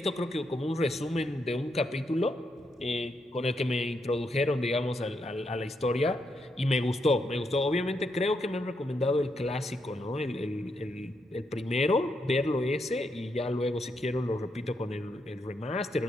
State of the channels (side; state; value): both; normal; correlation 0.80